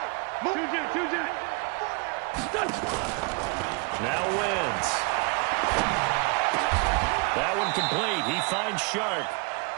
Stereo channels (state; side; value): quieter; left; 31.1 dB